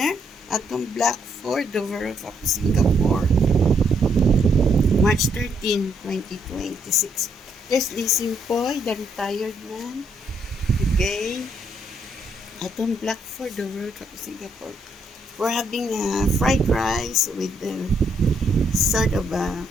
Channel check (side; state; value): both; normal; correlation 0.73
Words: at the Black Fort, the World of Singapore, March 13, 2026. There's Lizzie Poy, the retired man. Okay. At the Black Fort, the World of Singapore. We're having fried rice with sort of a